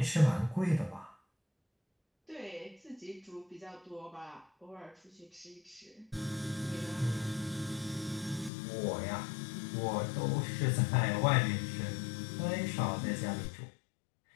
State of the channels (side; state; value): right; drops out; at 8.5 s